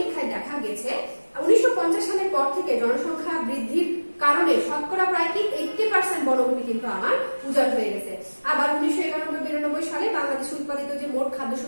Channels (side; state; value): both; inverted; correlation -1.00